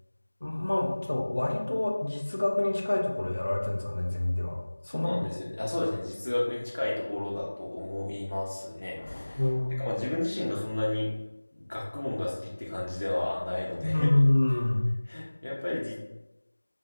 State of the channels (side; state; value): both; inverted; correlation -1.00